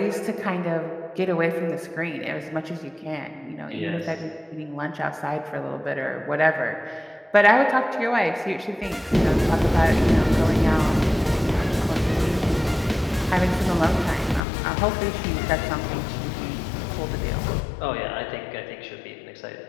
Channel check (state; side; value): drops out; right; at 14.4 s